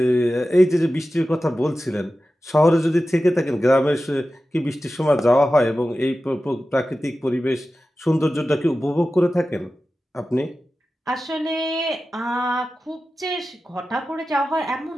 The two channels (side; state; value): both; normal; correlation 0.94